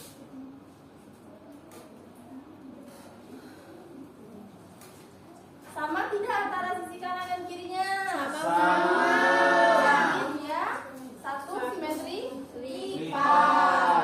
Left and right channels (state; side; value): identical; both; correlation 1.00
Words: Sama tidak antara sisi kanan dan kirinya? Sama. Jadi dia satu simetri